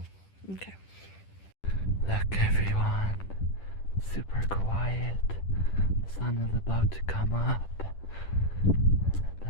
Okay. Look, everyone. Super quiet. The sun is about to come up. The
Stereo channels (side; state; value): right; late; 10 ms